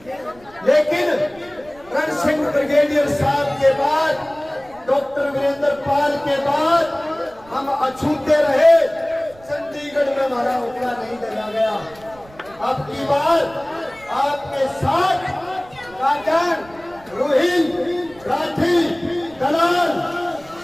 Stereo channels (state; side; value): noise; right; rumble, 25 dB below the sound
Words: लेकिन रण सिंह ब्रिगेडियर साहब के बाद, डॉक्टर वीरेंद्र पाल के बाद हम अछूते रहे। चंडीगढ़ में हमारा उकड़ा नहीं डाला गया। अब की बार आपके साथ काजन, रोहिल, राठी, दलाल,